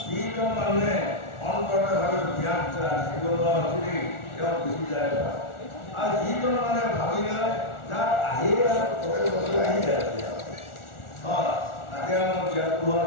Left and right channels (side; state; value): right; late; 1.4 ms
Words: যিজন মানুহে অন্তৰভাৱে জ্ঞান থাকিব নোৱাৰি তেওঁ গুচি যায় আৰু যিজন মানুহে ভাবি লয় যাৰ আহি প্ৰত্যেক বছৰ আহি যায় তাতে আমাৰ জ্ঞানটো হোৱাৰ